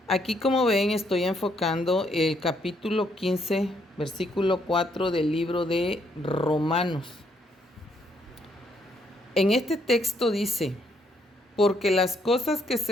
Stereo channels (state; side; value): normal; both; correlation 0.72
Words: Aquí, como ven, estoy enfocando el capítulo 15, versículo 4 del libro de Romanos. En este texto dice: porque las cosas que se